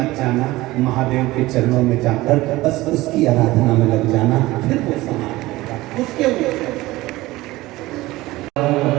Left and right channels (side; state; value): left; quieter; 18.7 dB